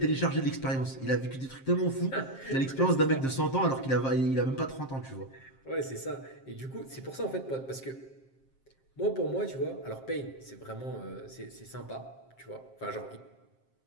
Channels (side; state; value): right; late; 7.5 ms